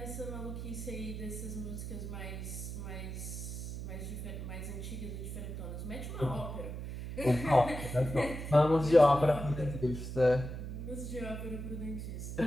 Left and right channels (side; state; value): right; noise; hum, 6 dB below the sound